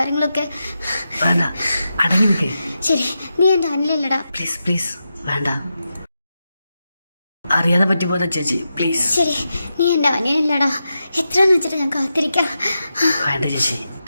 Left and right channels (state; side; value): inverted; both; correlation -0.89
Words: വേണ്ട, അടങ്ങി നിൽക്കേ. ശരി, നീ എൻ്റെ അനിലല്ലടാ. പ്ലീസ് പ്ലീസ് വേണ്ട. അറിയാതെ പറ്റിപ്പോതാ ചേച്ചി, പ്ലീസ്. ശരി, നീ എൻ്റെ അനിയനല്ലടാ. എത്രയെന്ന് വെച്ചിട്ട് ഞാൻ കാത്തിരിക്കാം. വേണ്ട ചേച്ചി